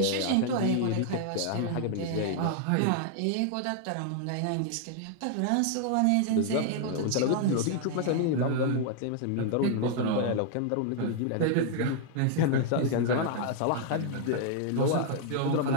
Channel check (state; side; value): different; both; correlation 0.00